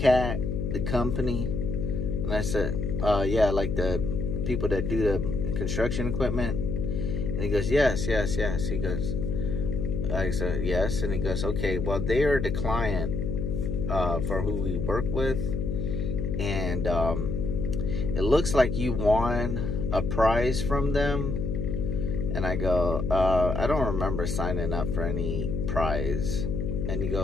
the company? And I said, yeah, like the people that do the construction equipment. And he goes, yes. He goes, I said, yes. And he goes, okay, well, they are the client for who we work with. And it looks like you won a prize from them. And I go, I don't remember signing up for any prize. And he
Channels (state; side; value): noise; left; hum, 1 dB below the sound